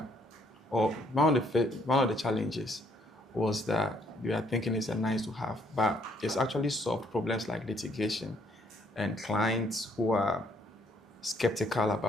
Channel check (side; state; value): both; normal; correlation 0.67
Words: or one of the challenges was that we are thinking it's a nice to have, but it's actually solved problems like litigation and clients who are skeptical